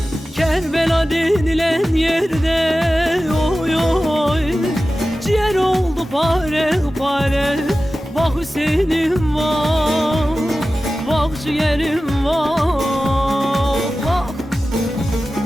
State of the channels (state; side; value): normal; both; correlation 0.95